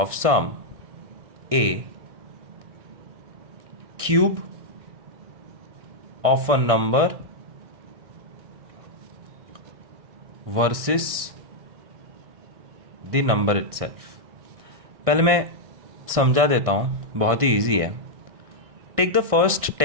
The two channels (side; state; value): left; late; 1.6 ms